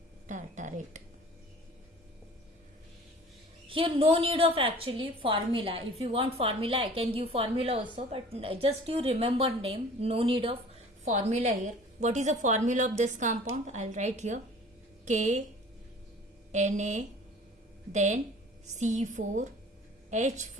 tartarate. Here no need of actually formula. If you want formula, I can give formula also, but just you remember name. No need of formula here. What is the formula of this compound? I'll write here K Na, then C4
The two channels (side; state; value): both; normal; correlation 0.47